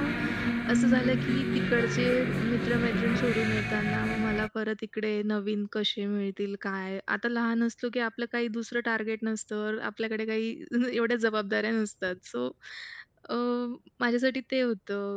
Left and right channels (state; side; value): identical; both; correlation 1.00